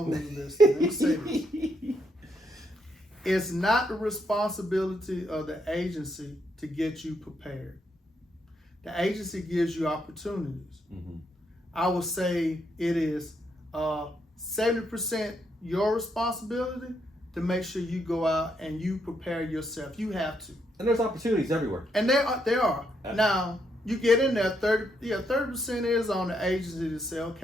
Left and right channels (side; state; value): both; normal; correlation 0.77